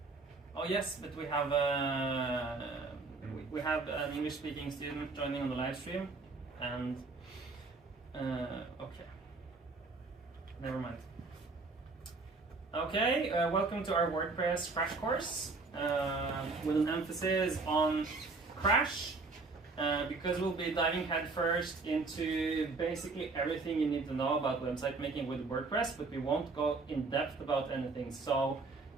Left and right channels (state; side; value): quieter; left; 3.8 dB